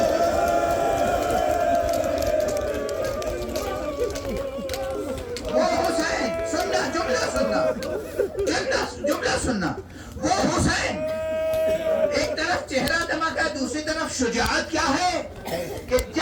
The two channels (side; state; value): both; identical; correlation 1.00